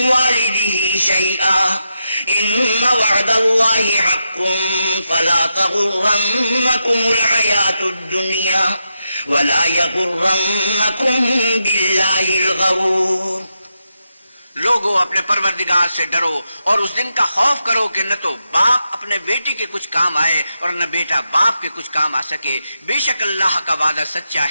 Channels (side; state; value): both; inverted; correlation -0.87